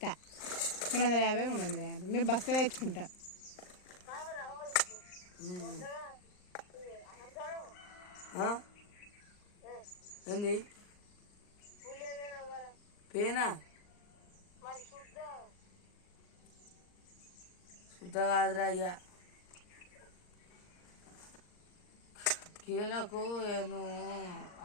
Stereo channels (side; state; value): right; late; 39 ms